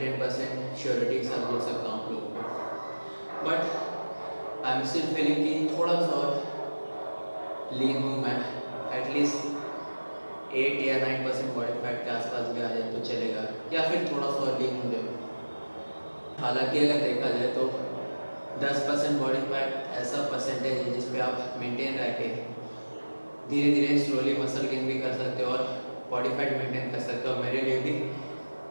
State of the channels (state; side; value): inverted; both; correlation -1.00